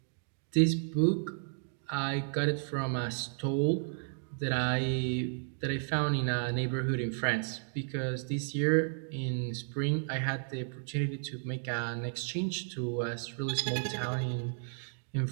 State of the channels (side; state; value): left; silent; digital silence